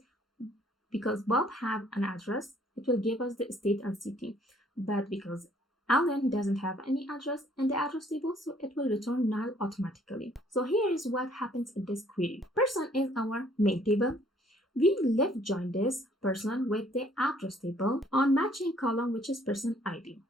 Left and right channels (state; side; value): normal; both; correlation 0.62